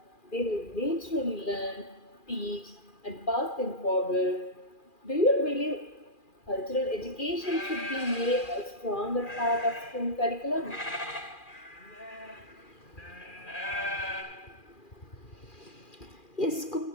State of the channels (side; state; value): right; late; 2.4 ms